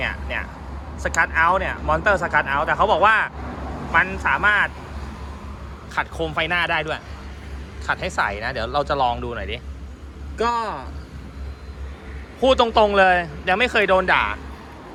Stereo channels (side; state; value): both; identical; correlation 1.00